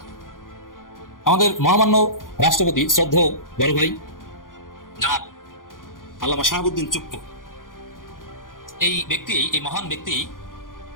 আমাদের মহামান্য রাষ্ট্রপতি শ্রদ্ধেয় বড় ভাই জনাব আল্লামা শাহাবুদ্দিন চুপ্পু, এই মহান ব্যক্তি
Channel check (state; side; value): late; right; 0.90 ms